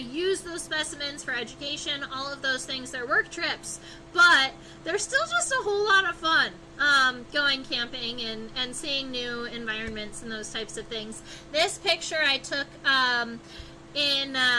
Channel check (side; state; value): both; identical; correlation 1.00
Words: those specimens for education, all of those things. They're work trips, but they're still just a whole lot of fun. Going camping and seeing new environments and those types of things. This picture I took in